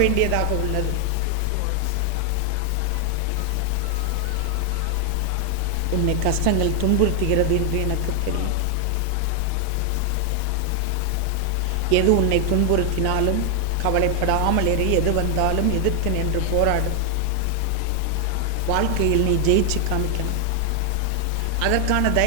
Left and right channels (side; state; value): both; different; correlation 0.00